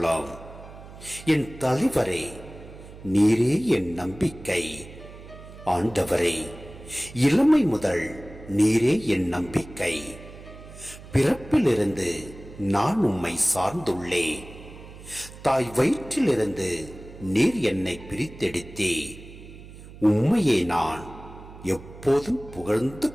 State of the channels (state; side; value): noise; right; hum, 17 dB below the sound